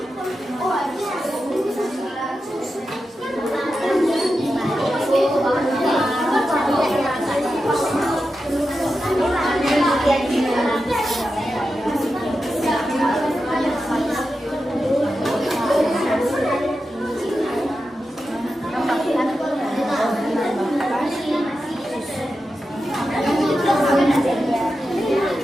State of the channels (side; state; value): both; normal; correlation 0.90